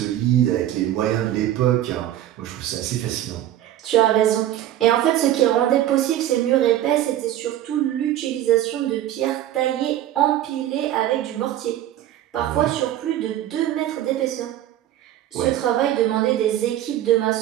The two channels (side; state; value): left; quieter; 12.6 dB